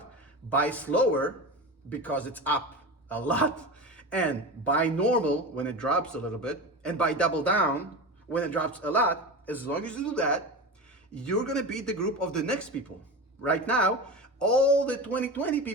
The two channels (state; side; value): normal; both; correlation 0.26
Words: buy slower because it's up a lot, and buy normal when it drops a little bit, and buy double down when it drops a lot, as long as you do that, you're going to beat the group of the next people. Right now, all the 2020